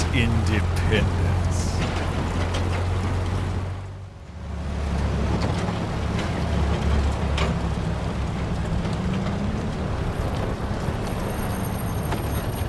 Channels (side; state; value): both; identical; correlation 1.00